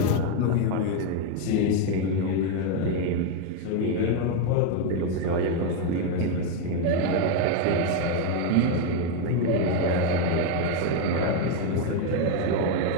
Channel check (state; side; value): different; both; correlation 0.02